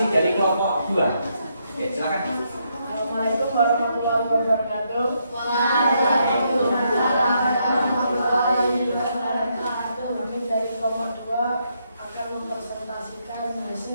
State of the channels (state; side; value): inverted; both; correlation -0.77